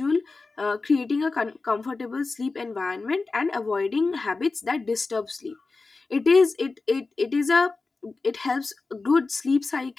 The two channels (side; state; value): right; quieter; 3.9 dB